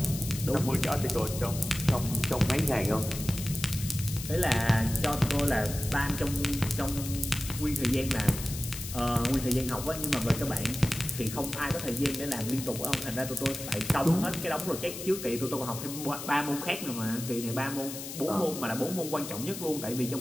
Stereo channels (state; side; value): noise; left; hiss, 9 dB below the sound